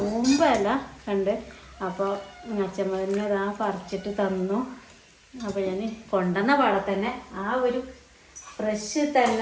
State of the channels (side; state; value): both; identical; correlation 1.00